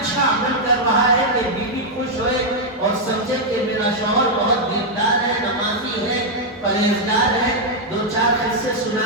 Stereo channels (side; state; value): both; normal; correlation -0.02